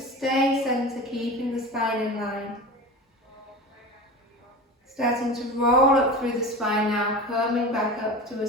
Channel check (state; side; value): normal; both; correlation 0.30